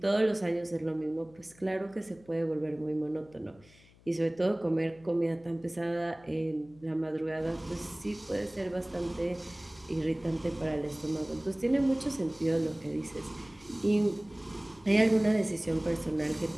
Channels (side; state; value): left; noise; hum, 26 dB below the sound